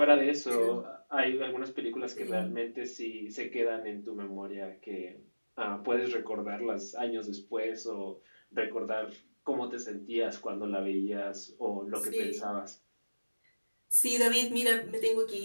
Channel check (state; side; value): inverted; both; correlation -1.00